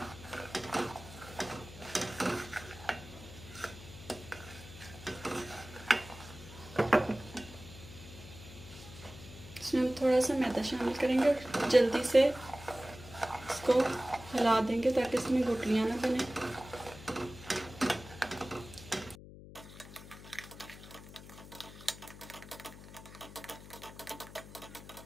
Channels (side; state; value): left; noise; hum, 16 dB below the sound